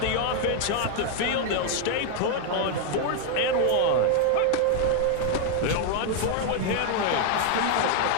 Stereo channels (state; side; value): different; both; correlation 0.00